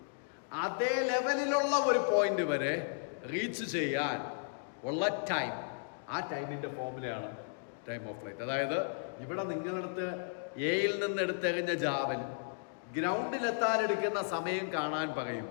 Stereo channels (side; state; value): right; silent; digital silence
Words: അതേ ലെവലിലുള്ള ഒരു പോയിന്റ് വരെ റീച്ച് ചെയ്യാൻ ഉള്ള ടൈം, ആ ടൈമിന്റെ ഫോർമുലയാണ് ടൈം ഓഫ് ഫ്ലൈറ്റ്. അതായത് ഇവിടെ നിങ്ങളടുത്ത് എയിൽ നിന്ന് എടുത്തെറിഞ്ഞ ജാവൽ ഗ്രൗണ്ടിലെത്താൻ എടുക്കുന്ന സമയം കാണാൻ